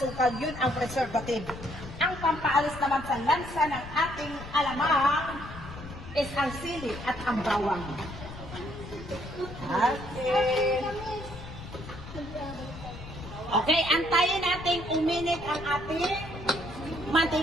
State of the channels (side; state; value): left; noise; rumble, 12 dB below the sound